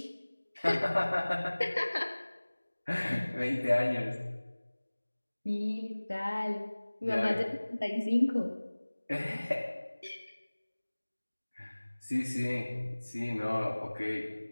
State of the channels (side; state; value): both; inverted; correlation -1.00